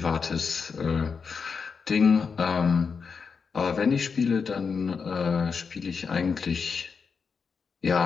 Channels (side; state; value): right; quieter; 5.6 dB